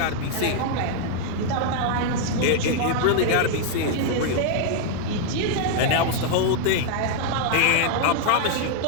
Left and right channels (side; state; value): both; different; correlation -0.01